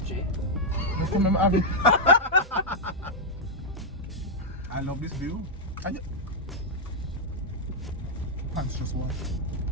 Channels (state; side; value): normal; both; correlation -0.03